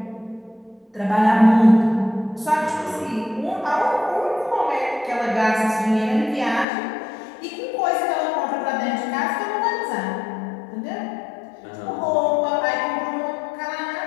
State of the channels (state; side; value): drops out; right; at 6.7 s